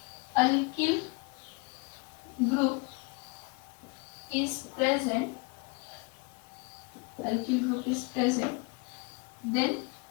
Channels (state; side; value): quieter; right; 29.6 dB